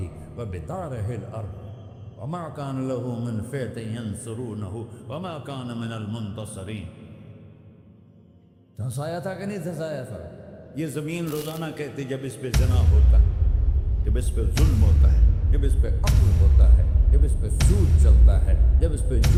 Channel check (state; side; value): identical; both; correlation 1.00